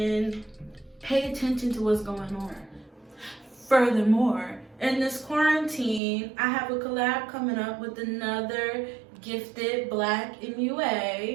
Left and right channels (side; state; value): left; drops out; at 6.0 s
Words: pay attention to what's going on. Furthermore, in this quarantine, I have a collab coming up with another gifted Black